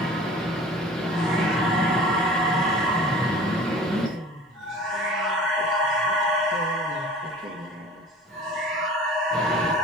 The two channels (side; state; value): both; normal; correlation 0.43